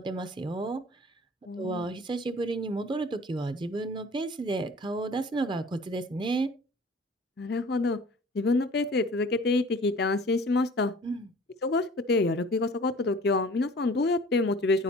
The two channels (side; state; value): both; normal; correlation 0.47